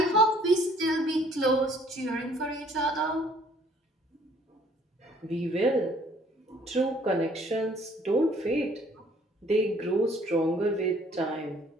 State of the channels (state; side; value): normal; both; correlation 0.60